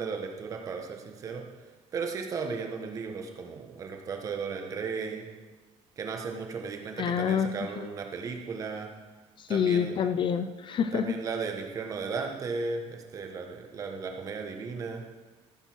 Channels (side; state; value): both; normal; correlation 0.53